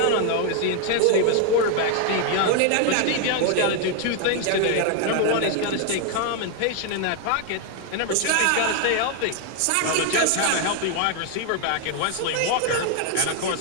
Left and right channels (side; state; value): both; different; correlation 0.00